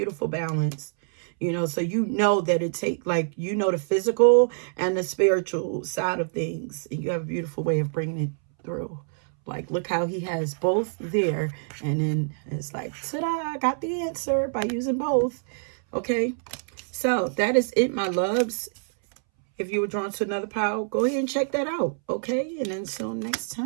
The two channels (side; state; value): left; silent; 61 dB below the other